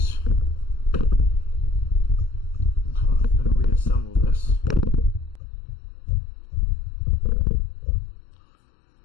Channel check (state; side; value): drops out; right; at 5.4 s